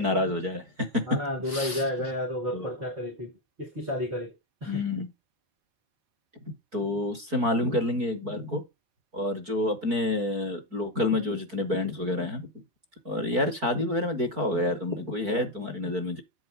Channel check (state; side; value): late; left; 4.5 ms